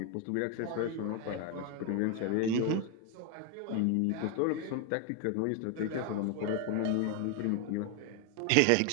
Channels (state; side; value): different; both; correlation 0.01